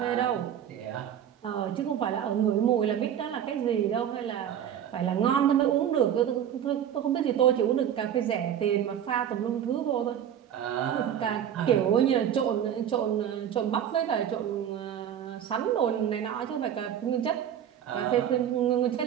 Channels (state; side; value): quieter; left; 9.7 dB